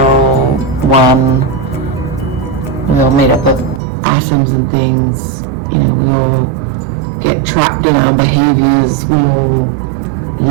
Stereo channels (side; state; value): left; drops out; at 3.8 s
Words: all one. We all made up of atoms and things. We all get trapped in our behaviors. We all